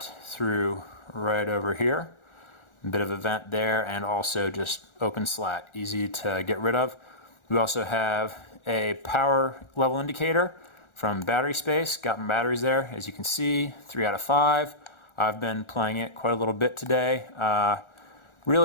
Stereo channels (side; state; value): right; late; 1.4 ms